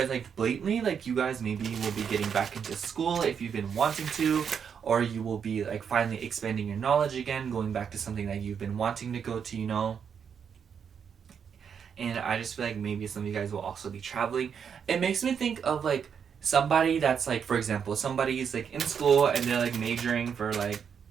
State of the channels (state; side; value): quieter; left; 7.2 dB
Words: like blatantly like you guys maybe will be getting back into school if you've been wanting to, or you will be like finally expanding your knowledge again, going back to something that you've been wanting to go to, you know. And I just feel like maybe some of you guys will also be traveling. It makes me think of like somebody that's like, for example, somebody's like in school and they're like majoring for like